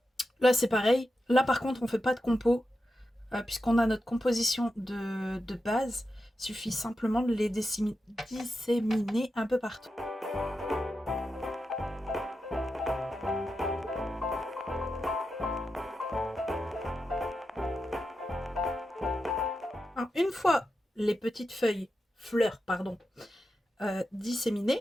Là, c'est pareil. Là, par contre, on ne fait pas de compo, puisqu'on a notre composition de base. Il suffit simplement de les disséminer un peu partout. Alors, une fois les petites fleurs,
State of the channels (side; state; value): both; normal; correlation 0.89